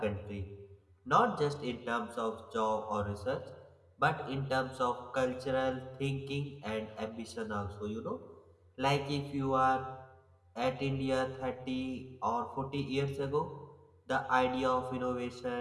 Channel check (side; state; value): both; identical; correlation 1.00